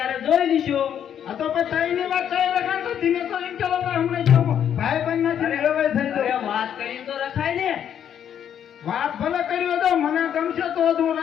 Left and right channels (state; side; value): quieter; right; 9.2 dB